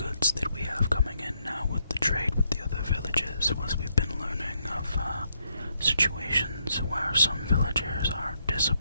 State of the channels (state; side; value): inverted; both; correlation -0.76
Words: that we have coming in now with the trade with the other villages was we've been learning of situations where some villagers are